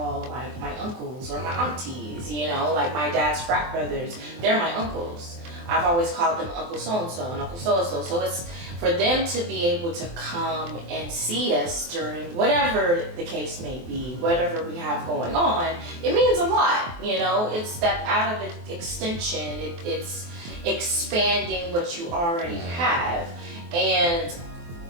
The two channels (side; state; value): left; late; 23 ms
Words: like my uncles or my aunties, you know, like my dad's frat brothers, they're my uncles. I've always called them Uncle so-and-so and Uncle so-and-so. So it's for them to be able to come and see us during whatever the case may be, whatever we have going on, it means a lot, you know. It's that out of extension, it's expanding what you already have. And